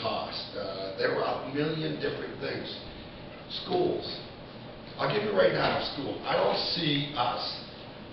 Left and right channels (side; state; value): both; identical; correlation 1.00